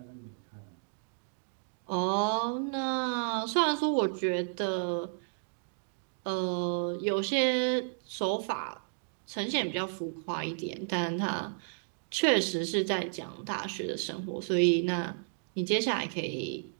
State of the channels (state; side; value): silent; left; digital silence